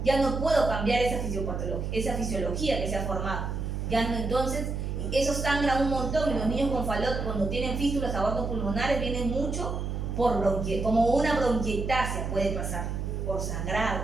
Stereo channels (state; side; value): noise; right; hum, 3 dB below the sound